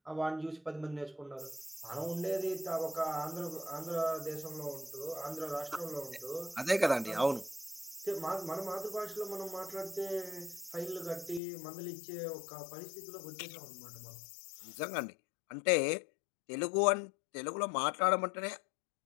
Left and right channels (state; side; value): drops out; right; at 11.4 s